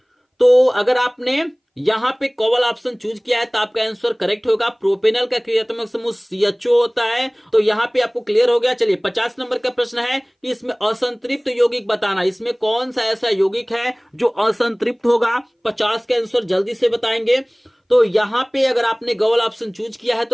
तो अगर आपने यहां पे कॉवल ऑप्शन चूज किया है तो आपका आंसर करेक्ट होगा। प्रोपेनल का क्रियात्मक समूह CHO होता है। तो यहां पे आपको क्लियर हो गया। चलिए 50 नंबर का प्रश्न है कि इसमें असंतृप्त यौगिक बताना। इसमें कौन सा ऐसा यौगिक है जो असंतृप्त होगा? 50 का आंसर जल्दी से बताएंगे। तो यहां पे अगर आपने गॉवल ऑप्शन चूज किया है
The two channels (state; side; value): identical; both; correlation 1.00